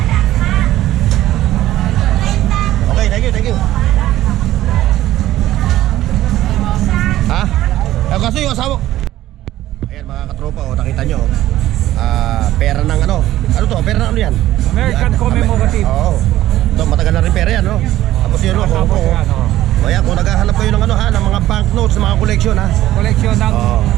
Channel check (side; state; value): left; quieter; 14.3 dB